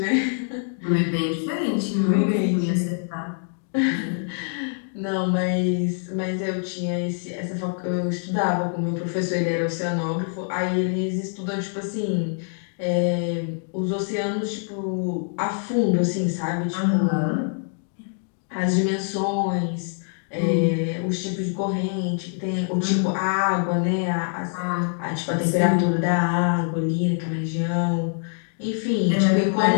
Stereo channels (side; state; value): right; silent; 62 dB below the other